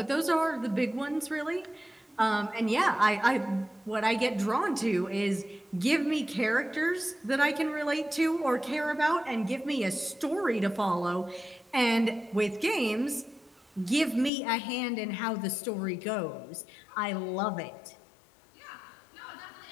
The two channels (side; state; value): right; drops out; at 14.3 s